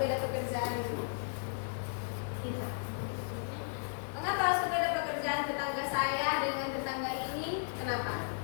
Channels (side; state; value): right; silent; 54 dB below the other